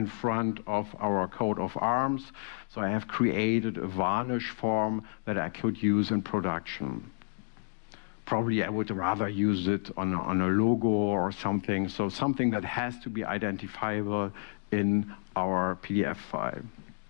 front of our coat of arms. So I have created a varnish form that I could use in production. Probably I would rather use it on a logo or something. So something that has to be identifiable in our PDF file.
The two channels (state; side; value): quieter; right; 38.1 dB